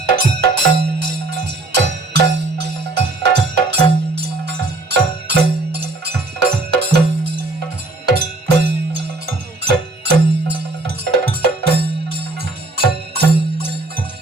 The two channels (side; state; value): left; quieter; 3.1 dB